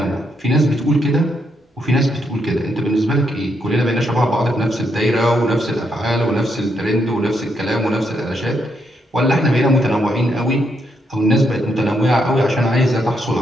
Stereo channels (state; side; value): normal; both; correlation 0.78